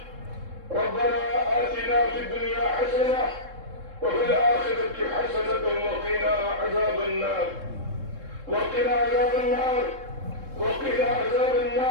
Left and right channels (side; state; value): left; late; 3.7 ms